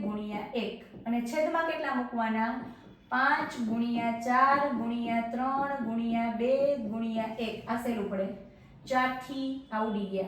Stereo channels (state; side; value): identical; both; correlation 1.00